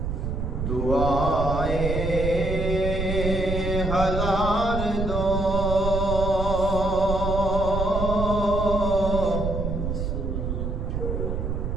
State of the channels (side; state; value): right; noise; rumble, 2 dB below the sound